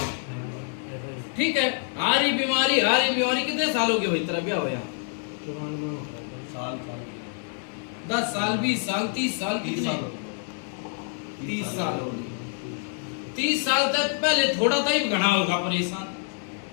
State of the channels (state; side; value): silent; right; 55 dB below the other